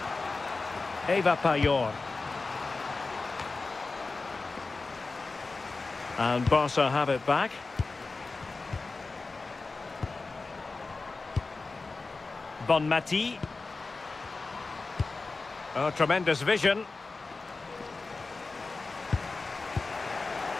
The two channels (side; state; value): right; quieter; 3.8 dB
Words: Eva Payor. And Barca have it back. Bonmati. Oh, tremendous vision.